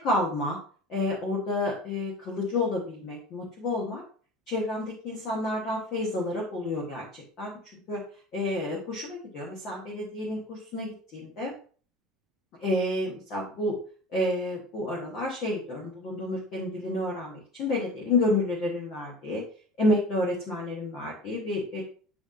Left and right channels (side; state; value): both; normal; correlation 0.39